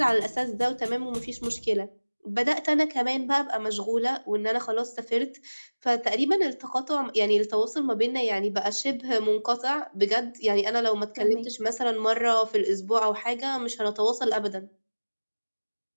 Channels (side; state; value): both; inverted; correlation -1.00